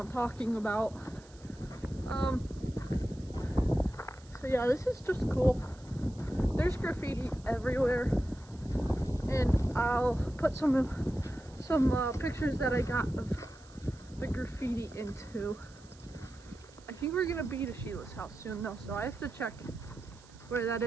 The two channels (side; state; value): right; noise; hiss, 25 dB below the sound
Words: talking about. So yeah, this is just cool. There's graffiti everywhere, and I'll put some pictures that I got of the graffiti into. I think we're gonna be to Sheila's house soon though, so I have to check where that